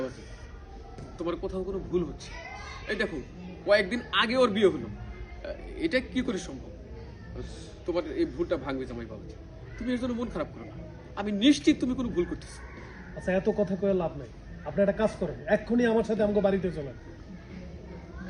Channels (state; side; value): identical; both; correlation 1.00